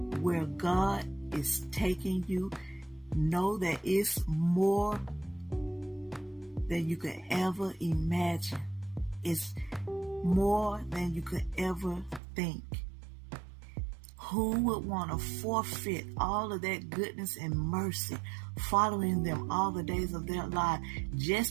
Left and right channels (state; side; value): drops out; left; at 12.2 s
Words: where God is taking you. Know that it's more than you could ever imagine. It's more than you could ever think. Who would want to forfeit all of that goodness and mercy following them all the days of their life